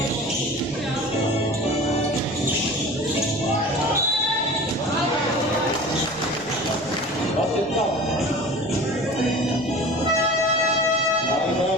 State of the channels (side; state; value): left; noise; rumble, 26 dB below the sound